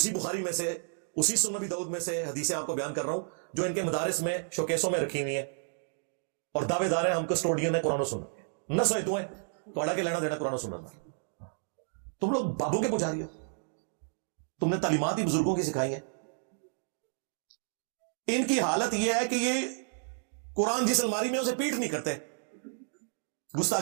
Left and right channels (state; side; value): silent; left; digital silence